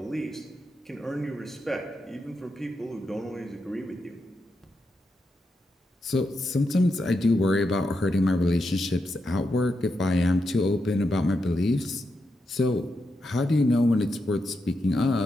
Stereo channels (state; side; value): normal; both; correlation 0.85